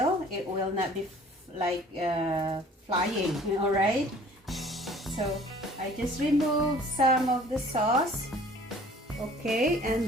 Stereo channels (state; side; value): normal; both; correlation 0.51